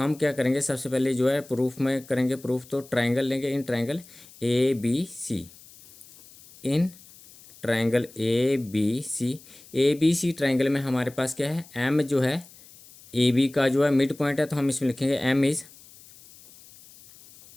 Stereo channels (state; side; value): noise; left; hiss, 22 dB below the sound